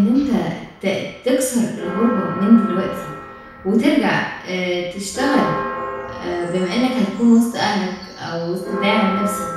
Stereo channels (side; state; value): both; identical; correlation 1.00